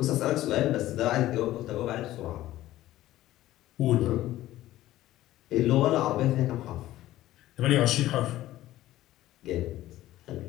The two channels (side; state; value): right; quieter; 15.0 dB